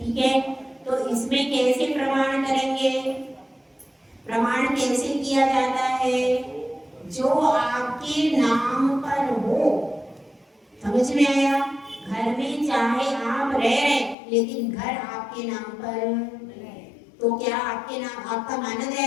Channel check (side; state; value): right; drops out; at 14.2 s